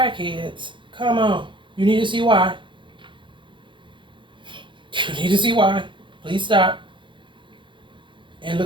come on. You need to see why. You need to see why. Please stop and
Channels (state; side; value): late; left; 0.23 ms